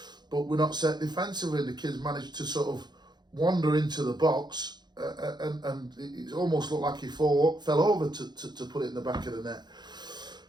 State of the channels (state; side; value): late; left; 0.21 ms